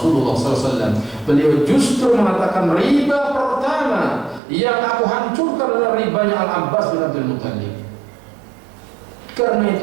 SAW, beliau justru mengatakan riba pertama yang aku hancurkan adalah ribanya Al-Abbas bin Abdul Muttalib. Karena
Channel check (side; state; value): left; drops out; at 4.4 s